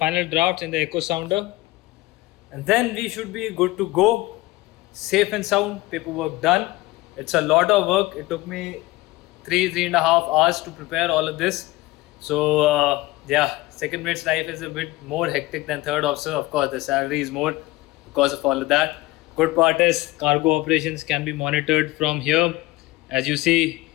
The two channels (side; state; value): right; quieter; 19.5 dB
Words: drafts in the echo sounder. And then we should be good to go. Safe and sound, paperwork done. It's a lot of work. It took me 3.5 hours to prepare all of this. So yeah, second mate's life is a bit more hectic than third officer. Of course, the salary is more because of all of that. Good part is cargo operations can be monitored from here. As you see,